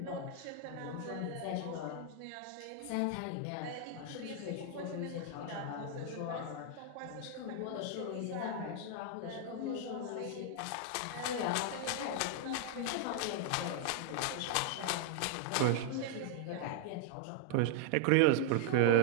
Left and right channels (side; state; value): both; different; correlation 0.00